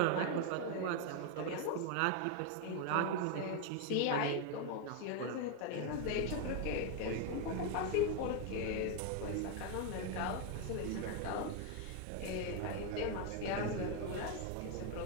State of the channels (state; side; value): different; both; correlation 0.01